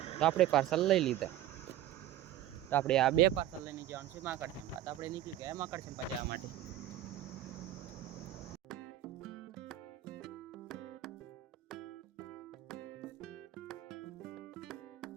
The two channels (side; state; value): left; quieter; 13.2 dB